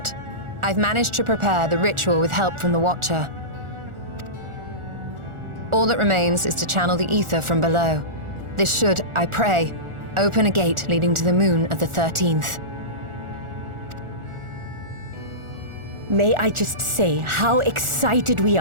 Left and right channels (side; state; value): left; late; 1.4 ms